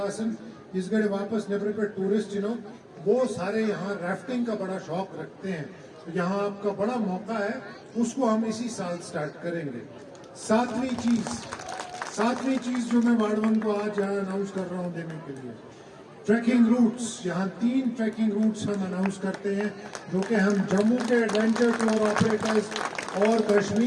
इस गड़े वापस नेबर पे टूरिस्ट वो सारे यहाँ राफ्टिंग का बड़ा शौक रखते हैं, तो यहाँ आपका बड़ा मौका है, उसको हम इसी साल स्टार्ट करेंगे। सातवीं चीज जो मैं वार्ड 1 को आज यहाँ अनाउंस कर रहा हूँ देने के लिए, ट्रैकिंग रूट्स। यहाँ 3 ट्रैकिंग रूट्स हम अनाउंस करते हैं, जो कि हम जम्मू के एडवेंचर टूर ऑपरेटर्स और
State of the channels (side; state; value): both; identical; correlation 1.00